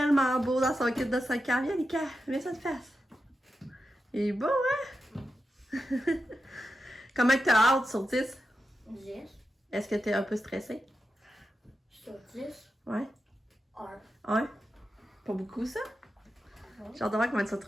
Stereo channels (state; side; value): normal; both; correlation 0.90